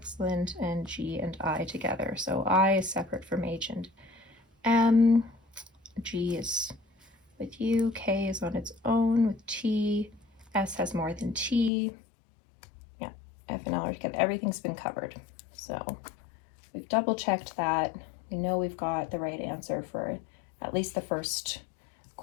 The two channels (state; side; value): drops out; right; at 11.7 s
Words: and G and I together. So I is separate from H and M. G is with U. K is on its own with T. S has more than T. Yeah, F and L are together. Everything's been covered. So we've double checked that. We know we've got the right answer for at least the first